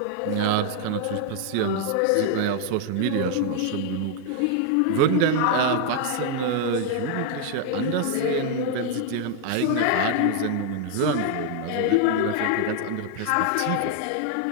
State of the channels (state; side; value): different; both; correlation 0.00